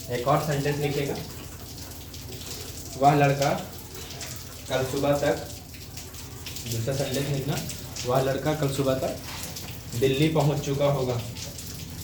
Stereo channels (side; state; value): both; identical; correlation 1.00